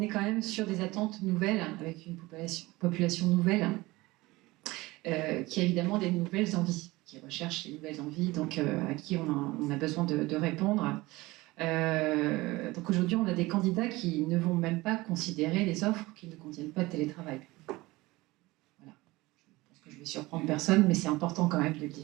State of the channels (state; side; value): quieter; left; 20.6 dB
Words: quand même sur des attentes nouvelles, avec une population nouvelle, qui a évidemment des nouvelles envies, qui recherche les nouvelles envies, donc à qui on a besoin de répondre. Donc aujourd'hui, on a des candidats qui ne vont même pas considérer les offres qui ne contiennent pas de télétravail. Je vais surprendre personne, mais c'est important quand même de le dire.